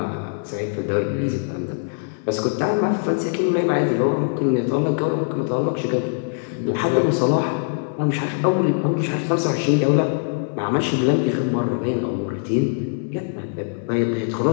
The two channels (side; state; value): right; silent; digital silence